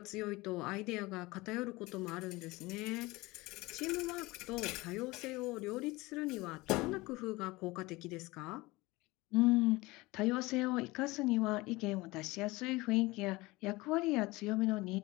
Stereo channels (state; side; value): quieter; right; 21.6 dB